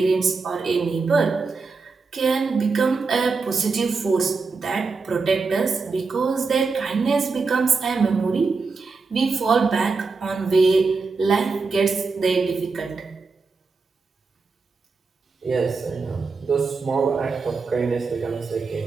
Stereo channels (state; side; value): quieter; left; 4.4 dB